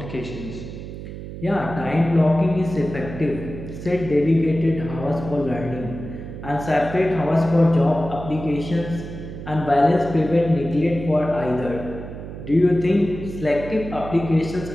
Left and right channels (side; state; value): right; noise; hum, 10 dB below the sound